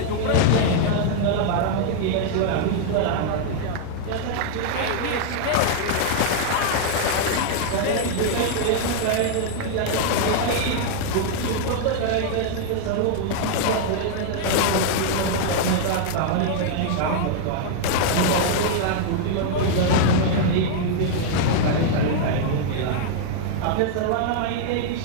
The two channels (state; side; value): different; both; correlation 0.00